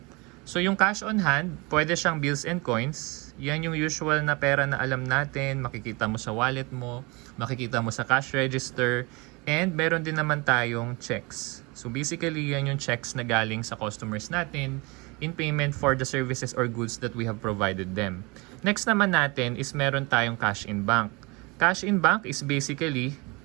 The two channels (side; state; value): left; quieter; 26.9 dB